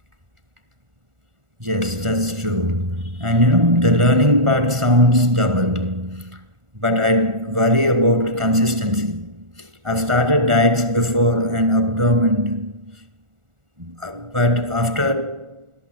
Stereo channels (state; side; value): late; left; 1.4 ms